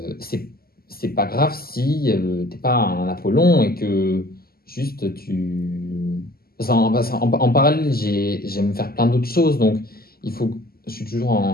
c'est pas grave si t'es pas un Apollon et que juste tu en parallèle, j'aime faire plein d'autres choses, donc je suis toujours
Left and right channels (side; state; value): right; late; 0.44 ms